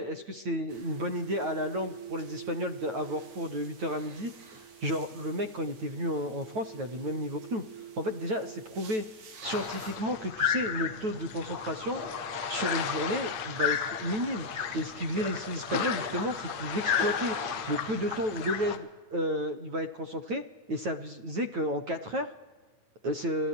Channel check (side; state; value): left; late; 9.2 ms